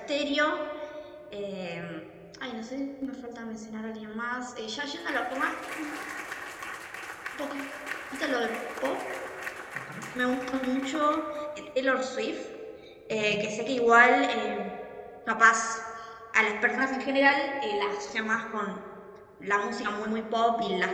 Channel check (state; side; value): identical; both; correlation 1.00